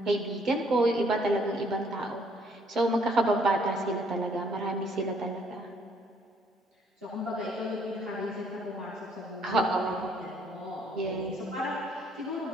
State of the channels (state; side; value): normal; both; correlation 0.65